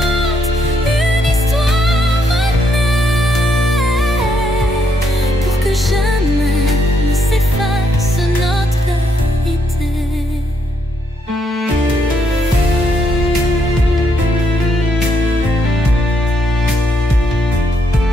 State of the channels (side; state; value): both; normal; correlation 0.75